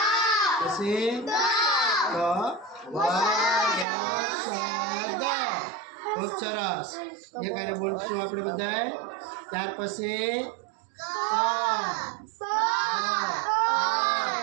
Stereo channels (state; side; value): drops out; left; at 3.9 s